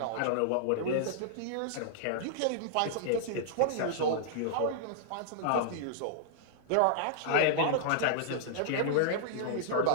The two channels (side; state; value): both; different; correlation -0.01